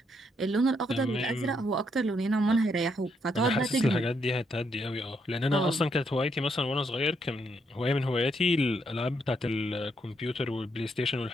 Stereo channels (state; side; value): normal; both; correlation 0.76